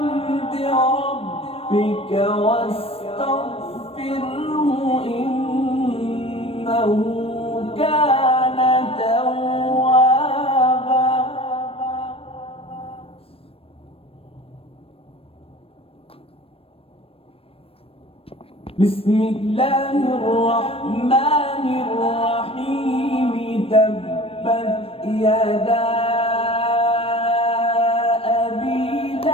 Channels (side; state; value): right; late; 0.28 ms